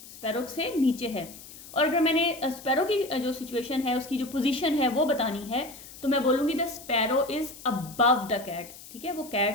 स्पैरो से नीचे है। और अगर मैंने स्पैरो की जो सिचुएशन है, उसकी जो पोजीशन है वो बतानी है, तो मैं बोलूँगी the sparrow is above the cat, ठीक है, वो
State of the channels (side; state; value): left; noise; hiss, 17 dB below the sound